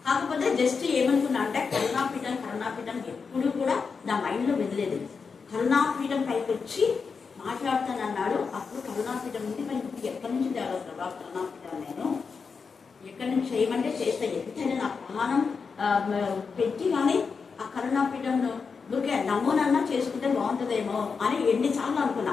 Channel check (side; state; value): right; quieter; 5.3 dB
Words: కాకపోతే జస్ట్ ఏమనుకున్నా అంటే కరుణాపీఠం ఎప్పుడు కూడా నా మైండ్లో వెదలేదు. కరుణాపీఠం పైకి వచ్చి మాట్లాడుతానన్నాడు. అప్పుడు కరుణాపీఠం ఉంది, మరి ఎక్కడి నుంచి తేవాలి ప్రభా కరుణాపీఠం, నేను ఎక్కడి నుంచి చేయమంటే చేస్తా. ఎంతైనా నా ప్రాణం పెట్టి కానీ ఆ కరుణాపీఠంలో ఊరికే నమూనన్నా చేసుకుంటే బాగుంటుందేమో అని ఎన్నిసార్లు అనుకున్నా.